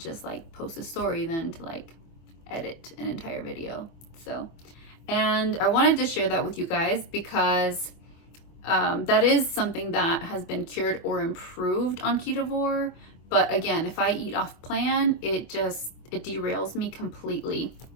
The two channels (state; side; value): late; right; 24 ms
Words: like post a story than to like edit an entire video. So, and I wanted to share that with you guys because that is something that has been cured or improved on Ketovore. But again, if I eat off plan, it derails me completely.